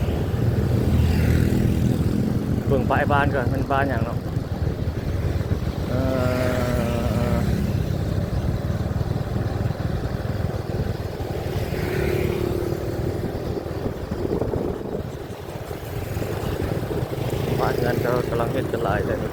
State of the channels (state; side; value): identical; both; correlation 1.00